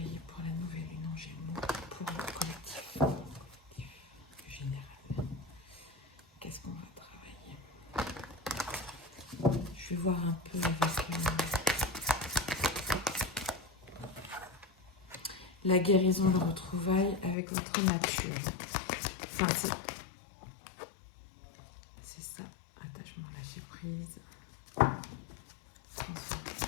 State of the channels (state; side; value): drops out; right; at 17.4 s